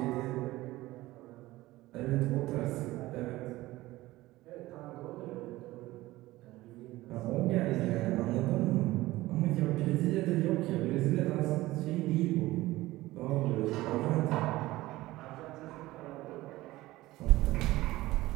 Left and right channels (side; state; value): left; quieter; 17.9 dB